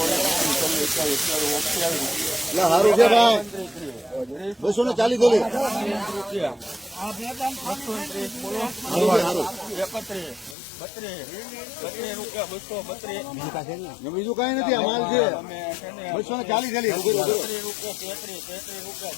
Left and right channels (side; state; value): right; drops out; at 10.6 s